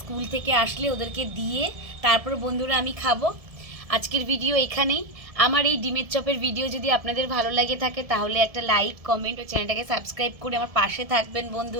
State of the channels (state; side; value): late; left; 1.7 ms